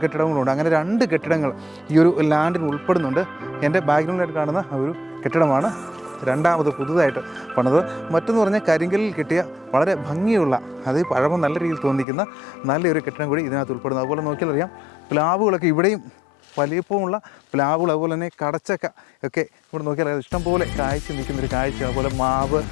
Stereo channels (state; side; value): drops out; right; at 12.1 s